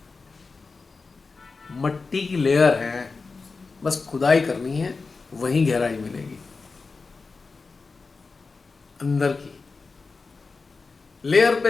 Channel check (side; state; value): right; quieter; 4.3 dB